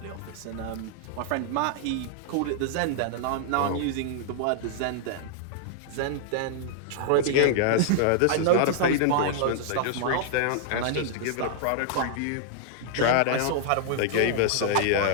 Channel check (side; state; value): both; different; correlation -0.01